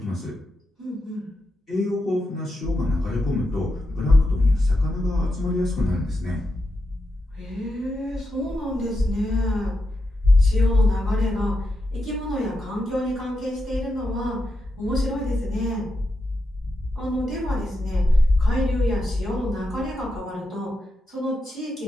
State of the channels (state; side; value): normal; both; correlation 0.86